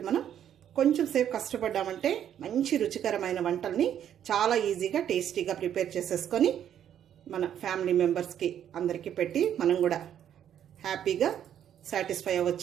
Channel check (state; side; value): quieter; left; 9.9 dB